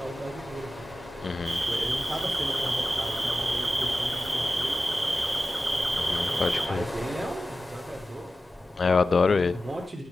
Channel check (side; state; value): both; normal; correlation 0.94